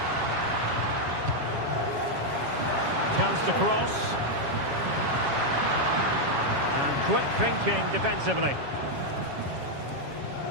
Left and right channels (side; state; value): left; late; 7.3 ms